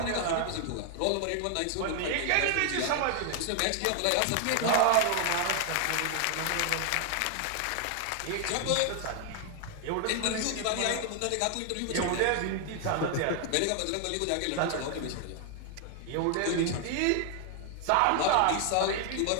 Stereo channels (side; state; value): both; different; correlation 0.00